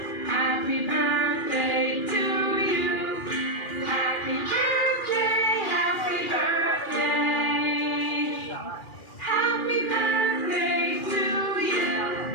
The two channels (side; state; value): right; late; 2.4 ms